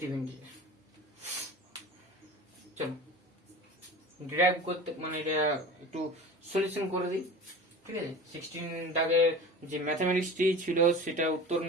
ইন্টিজার। চলো ডিরাইভ করতে মানে এটা একটু সলিউশন করে দিই, ঠিক আছে। 16 দাগের যে ম্যাথমেটিক্সটি ছিল সেটা উত্তর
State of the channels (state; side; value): normal; both; correlation 0.36